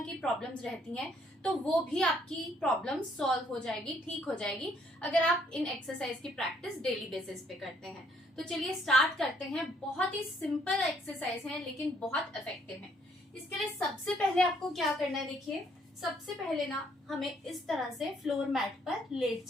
की प्रॉब्लम्स रहती हैं, तो वो भी आपकी प्रॉब्लम सॉल्व हो जाएगी, ठीक हो जाएगी अगर आप इन एक्सरसाइज की प्रैक्टिस डेली बेसिस पे करते हैं। तो चलिए स्टार्ट करते हैं। बहुत ही सिंपल एक्सरसाइज है लेकिन बहुत इफेक्टिव है। इसके लिए सबसे पहले आपको क्या करना है, देखिए सबसे पहले ना हमें इस तरह से फ्लोर मैट पर लेट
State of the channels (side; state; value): both; normal; correlation 0.67